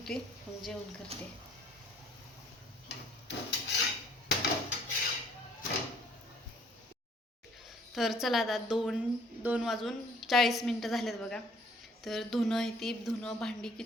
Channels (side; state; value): both; normal; correlation 0.59